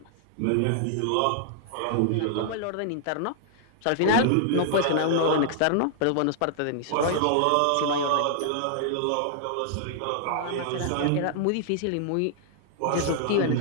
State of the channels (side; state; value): both; different; correlation -0.01